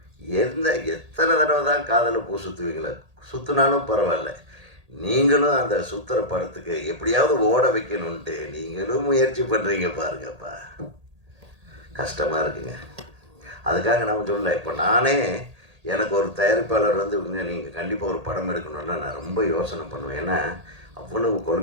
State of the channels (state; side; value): late; left; 1.8 ms